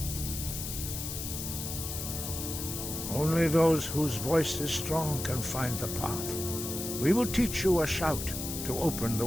Only those whose voice is strong can find the path. We will teach you a shout to open the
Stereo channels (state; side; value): noise; left; hiss, 6 dB below the sound